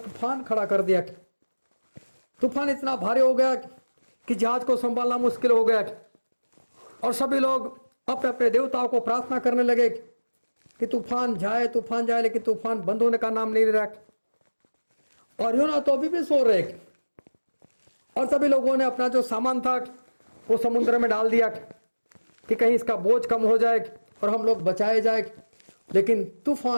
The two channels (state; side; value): inverted; both; correlation -1.00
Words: खड़ा कर दिया। तूफान इतना भारी हो गया कि जहाज को संभालना मुश्किल हो गया, और सभी लोग अपने अपने देवताओं को प्रार्थना करने लगे कि तूफान जाए, लेकिन तूफान बंद होने का नाम नहीं ले रहा। और योना तो अभी भी सो रहे, और सभी लोगों ने अपना जो सामान था वो समुद्र में डाल दिया कि कहीं इसका बोझ कम हो जाए और हम लोग बचाए जाए। लेकिन